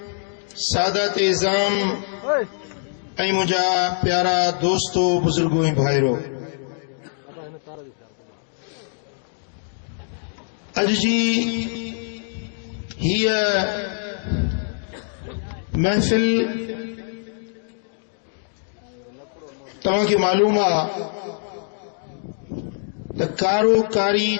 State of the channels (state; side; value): silent; right; digital silence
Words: सादात इज़ाम ऐं मुंहिंजा प्यारा दोस्तो, बुजुर्गो ऐं भाइरो, अॼु जी हीअ महफ़िल तव्हांखे मालूम आहे त कारो कारी